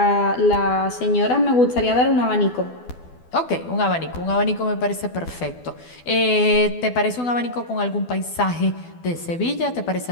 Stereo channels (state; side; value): late; right; 12 ms